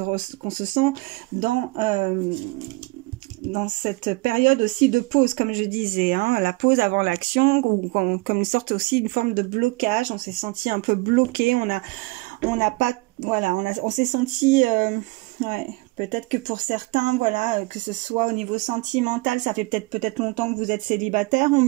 sent dans cette période aussi de pause, comme je disais, hein, la pause avant l'action, ou comme une sorte aussi, une forme de blocage. On s'est senti un peu bloqué, on n'a pas, voilà, on s'est senti, ouais, peut-être que pour certains, voilà, que ce soit au niveau sentimental, ça fait peut-être longtemps que vous êtes célibataire, on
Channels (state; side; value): quieter; left; 24.0 dB